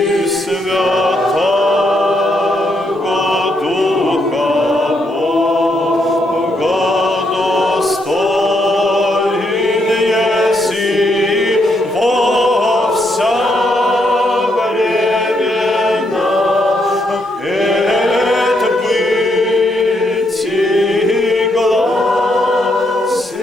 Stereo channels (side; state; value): both; normal; correlation 0.77